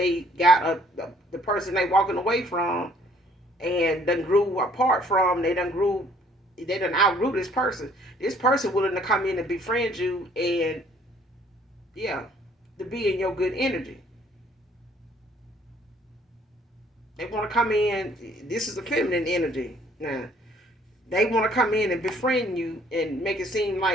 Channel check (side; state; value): both; normal; correlation 0.60